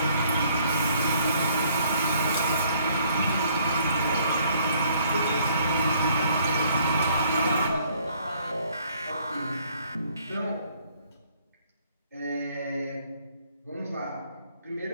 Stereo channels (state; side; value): inverted; both; correlation -0.63